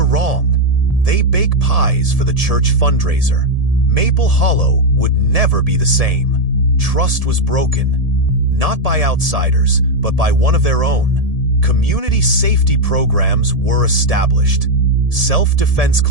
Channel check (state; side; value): late; left; 1.7 ms